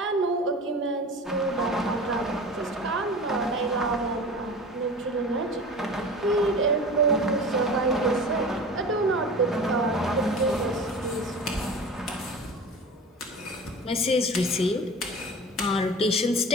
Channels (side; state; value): both; normal; correlation 0.36